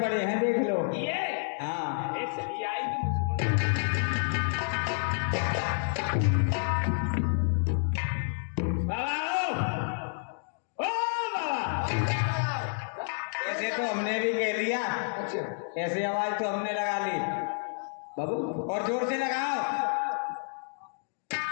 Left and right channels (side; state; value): right; silent; digital silence